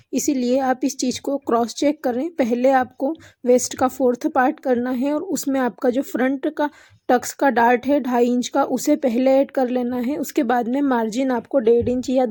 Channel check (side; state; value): both; identical; correlation 1.00